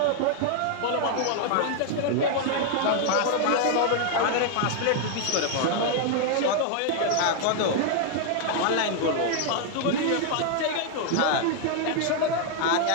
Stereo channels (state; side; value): different; both; correlation 0.00